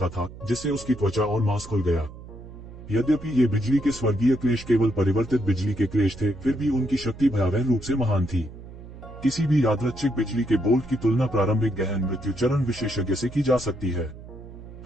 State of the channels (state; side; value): noise; right; hum, 15 dB below the sound